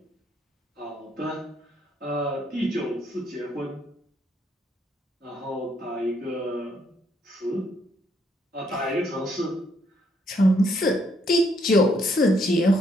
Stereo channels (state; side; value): normal; both; correlation 0.71